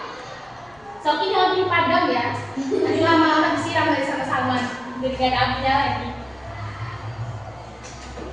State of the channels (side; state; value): left; noise; rumble, 30 dB below the sound